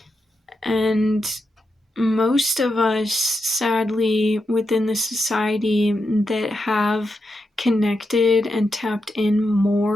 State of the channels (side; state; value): both; normal; correlation 0.86